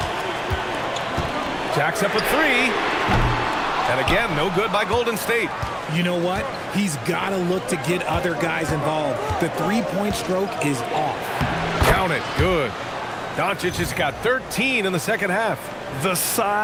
Jacks up a 3. And again, no good by Golden State. You know what? He's got to look to get other guys involved. The three-point stroke is off. Count it. Good. Doncic has got 13 in the second half. The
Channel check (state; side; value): identical; both; correlation 1.00